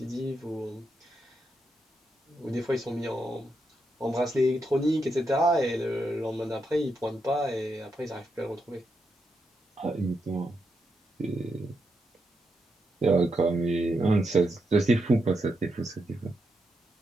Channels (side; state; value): both; normal; correlation 0.83